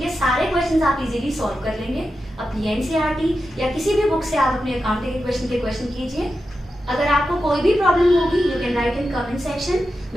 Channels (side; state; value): both; normal; correlation 0.90